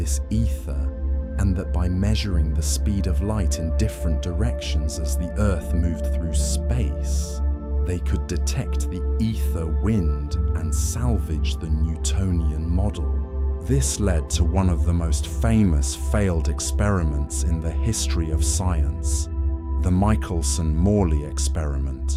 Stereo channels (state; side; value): identical; both; correlation 1.00